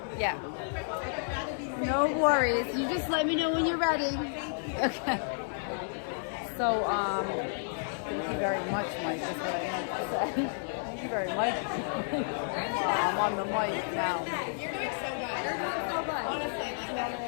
yeah. I'd rather be safe. No worries. You just let me know when you're ready. Okay. So, thank you very much, Mike. That's what I meant to say. Thank you very much. I'm on the mic now. You're doing so good. You're doing so good. Honestly,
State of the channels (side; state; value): right; silent; digital silence